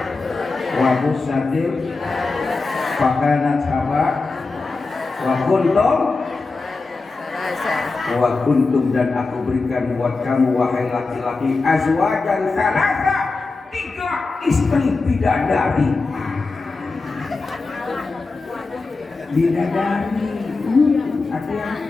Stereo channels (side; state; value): right; quieter; 3.9 dB